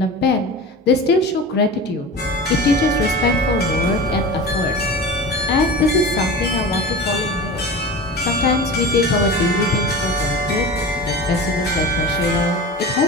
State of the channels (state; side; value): normal; both; correlation 0.32